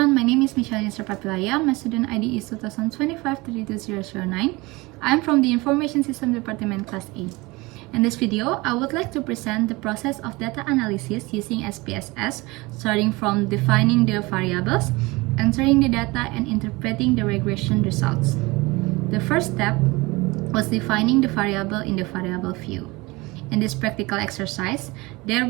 my name is Michelle Papilaya. My student ID is 2025-32009. I'm from the Information System Department Class A. In this video, I would like to present the process of data analysis using SPSS, starting from defining the variables, entering the data, and interpreting the regression results. The first step was defining the variable in the variable view. In this practical exercise, there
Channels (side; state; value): left; quieter; 23.2 dB